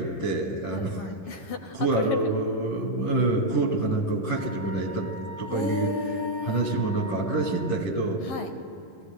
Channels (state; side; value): late; right; 11 ms